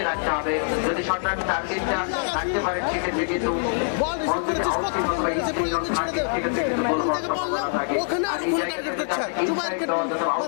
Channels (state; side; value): silent; right; 62 dB below the other